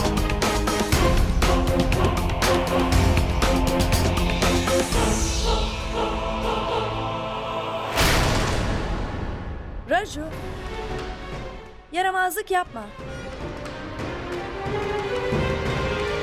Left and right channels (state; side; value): identical; both; correlation 1.00